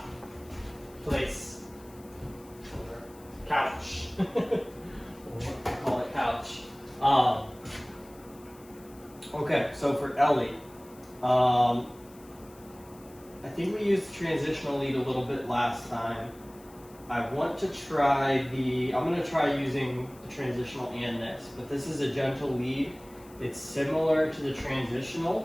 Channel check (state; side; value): noise; left; hiss, 25 dB below the sound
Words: Place. Couch. Call it couch. Okay, so for Ellie, I think we used the transitional lead a little bit last time. I want to try I'm going to try using the transitional and this, but this is a gentle lead. It's similar to the